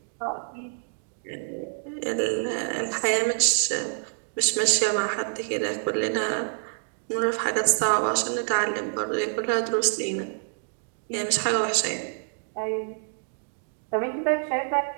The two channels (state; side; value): silent; left; digital silence